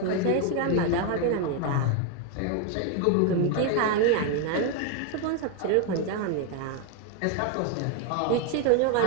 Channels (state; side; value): different; both; correlation 0.01